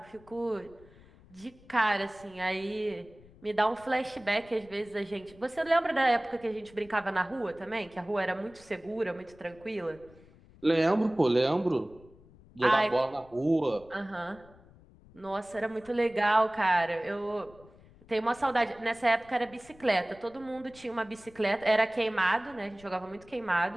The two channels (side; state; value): left; noise; rumble, 24 dB below the sound